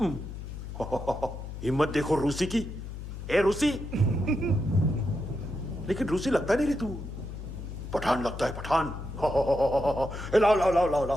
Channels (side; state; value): left; noise; hum, 9 dB below the sound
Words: हिम्मत देखो रूसी की। ए रूसी। लेकिन रूसी लगता नहीं रे तू, पठान लगता है पठान। लाओ लाओ लाओ लाओ